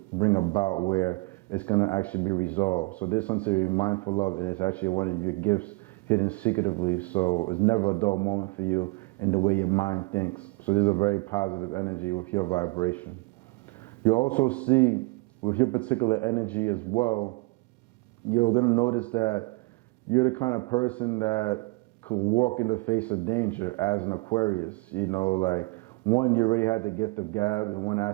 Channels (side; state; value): left; quieter; 25.8 dB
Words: bring about where it's going to actually be resolved. So there's something to be mindful of, and it's actually one of your gifts hidden secretively. So it's never a dull moment for you in the way your mind thinks. So there's a very positive energy with your vibration. You also see with your particular energy as well, you're going to notice that you're the kind of person that could walk in the face of danger as an Aquarius. One, you already had the gift of gab in one